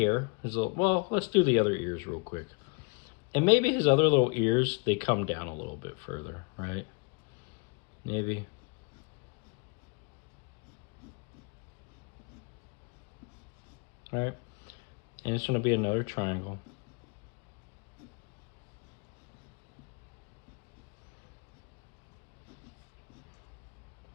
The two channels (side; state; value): right; quieter; 31.3 dB